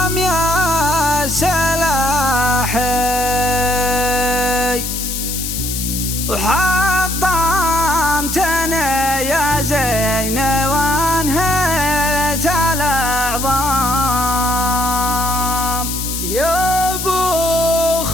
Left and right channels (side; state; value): left; noise; hiss, 4 dB below the sound